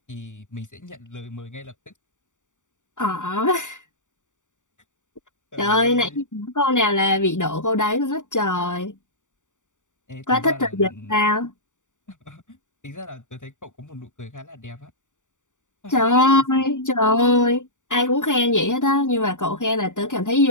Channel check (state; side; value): late; right; 0.86 ms